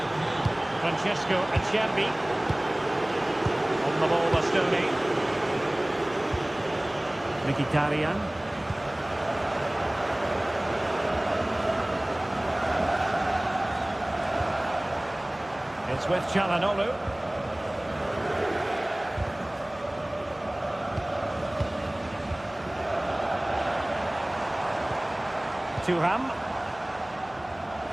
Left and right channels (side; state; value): right; noise; hum, 26 dB below the sound